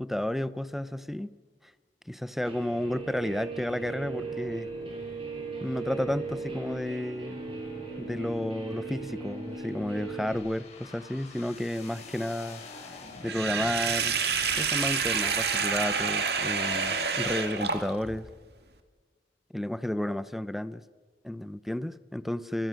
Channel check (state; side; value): normal; both; correlation 0.59